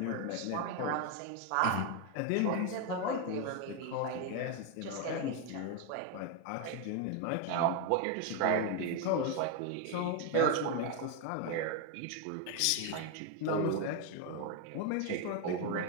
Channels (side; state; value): both; different; correlation 0.01